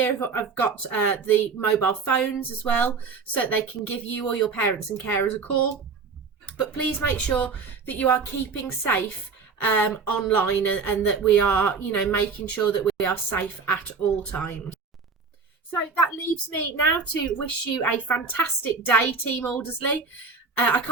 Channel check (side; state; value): left; quieter; 5.0 dB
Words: have got the mobile phones as well, so that they can give you or your parents and carers a call. But please make sure that you are keeping safe online, and that we are, you know, making sure that we are safe at all times. So that leaves me now to wish you a fantastic day, Team Aldersley. I